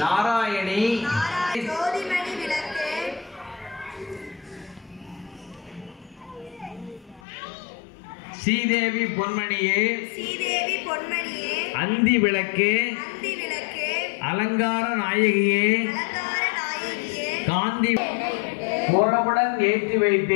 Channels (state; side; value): drops out; right; at 7.2 s